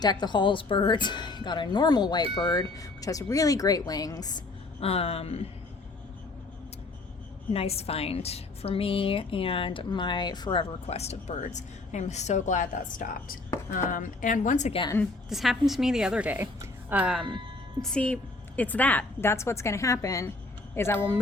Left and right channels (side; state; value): right; quieter; 3.3 dB